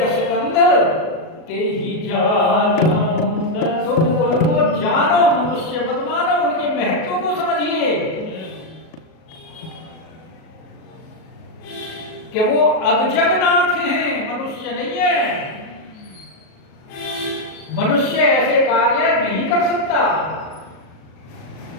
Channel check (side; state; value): right; late; 37 ms